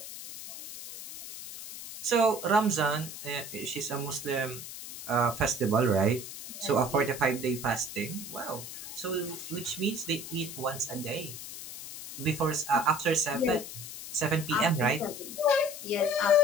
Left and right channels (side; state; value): left; noise; hiss, 10 dB below the sound